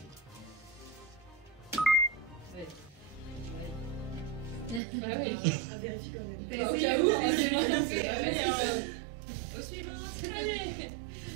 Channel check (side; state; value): left; drops out; at 4.8 s